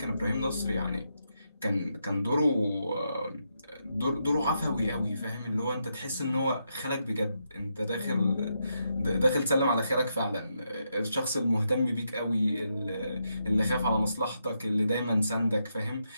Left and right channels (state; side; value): inverted; both; correlation -0.82